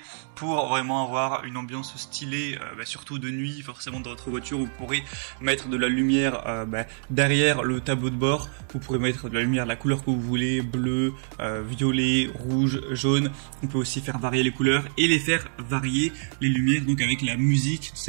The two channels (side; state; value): left; silent; 61 dB below the other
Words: pour vraiment avoir une ambiance stylée, surtout de nuit. Forcément dans votre voiture vous pourrez mettre de la lumière derrière le tableau de bord, vous pourrez mettre de la lumière de la couleur que vous voulez, bleu, violet, rouge, jaune. On peut aussi faire varier les couleurs et les faire varier les lumières donc avec la musique,